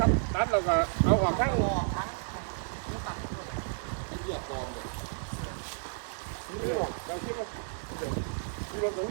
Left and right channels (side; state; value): left; silent; digital silence